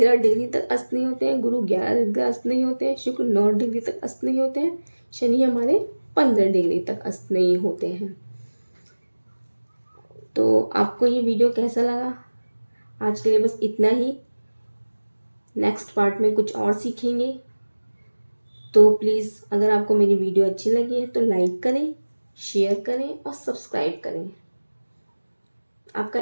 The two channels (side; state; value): both; inverted; correlation -1.00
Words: डिग्री तक अस्त नहीं होते हैं, गुरु 11 डिग्री अस्त नहीं होते हैं, शुक्र 9 डिग्री तक अस्त नहीं होते हैं, शनि हमारे 15 डिग्री तक अस्त नहीं होते हैं। तो आपको ये वीडियो कैसा लगा? आज के लिए बस इतना ही। नेक्स्ट पार्ट में कुछ और सीखेंगे। तो प्लीज़ अगर आपको मेरी वीडियो अच्छी लगी है तो लाइक करें, शेयर करें और सब्सक्राइब करें। आपका